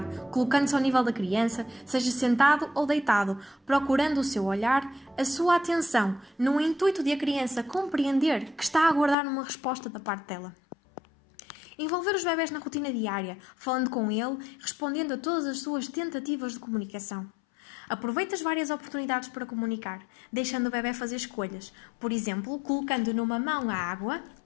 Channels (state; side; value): drops out; right; at 9.2 s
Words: colocando-se ao nível da criança, seja sentado ou deitado, procurando o seu olhar, a sua atenção, no intuito de a criança compreender que está a aguardar uma resposta da parte dela. Envolver os bebés na rotina diária, falando com ele, respondendo a todas as suas tentativas de comunicação. Aproveite as várias oportunidades para comunicar, deixando o bebé fazer escolhas, por exemplo, colocando numa mão a água